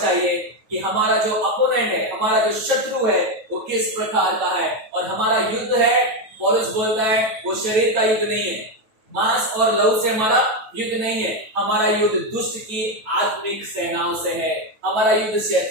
कि हमारा जो अपोनेंट है, हमारा जो शत्रु है, वो किस प्रकार का है। और हमारा युद्ध है, पौलुस बोलता है, वो शरीर का युद्ध नहीं है, मांस और लहू से हमारा युद्ध नहीं है। हमारा युद्ध दुष्ट की आत्मिक सेनाओं से है, हमारा युद्ध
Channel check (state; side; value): late; left; 9.2 ms